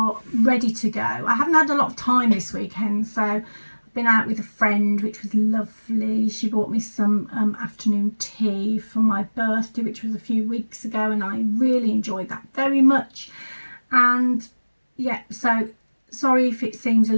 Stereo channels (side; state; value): both; inverted; correlation -1.00